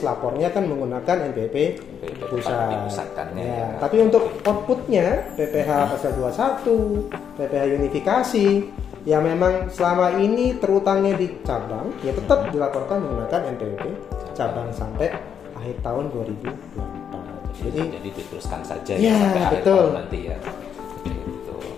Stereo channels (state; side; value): quieter; right; 8.1 dB